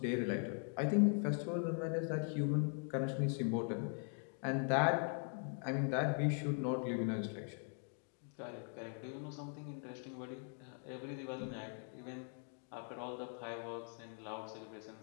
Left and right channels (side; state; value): right; silent; 50 dB below the other